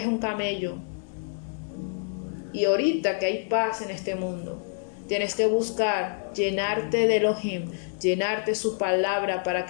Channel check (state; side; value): silent; right; digital silence